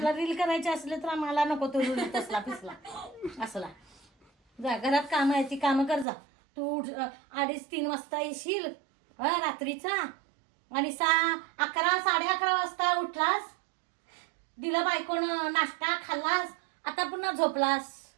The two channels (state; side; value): drops out; left; at 6.1 s